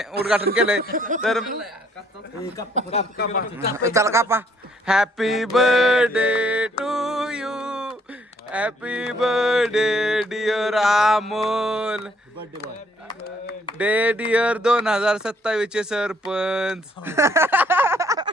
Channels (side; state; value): both; normal; correlation 0.66